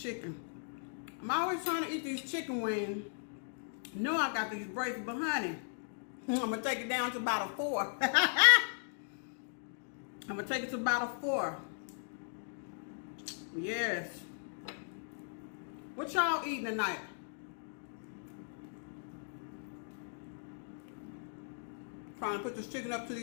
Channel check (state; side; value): silent; right; digital silence